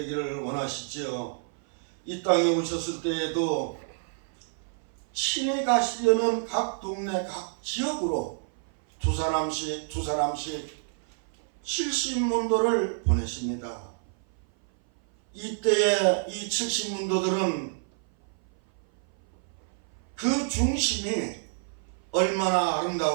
원하시지요. 이 땅에 오셨을 때에도 친히 가시려는 각 동네 각 지역으로 두 사람씩 70문도를 보내십니다. 이때에 이 70문도들은 그 중심이 얼마나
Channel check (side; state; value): left; silent; 56 dB below the other